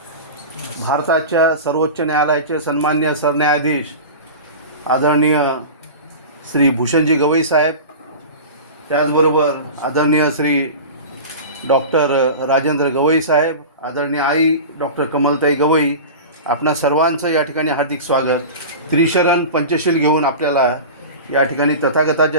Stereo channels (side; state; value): both; inverted; correlation -0.31